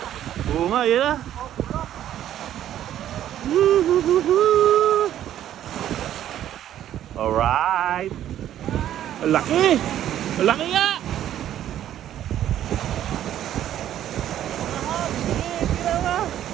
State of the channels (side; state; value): left; quieter; 11.5 dB